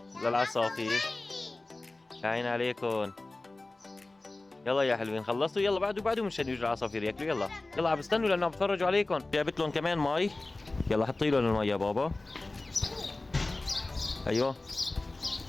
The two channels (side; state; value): right; quieter; 3.0 dB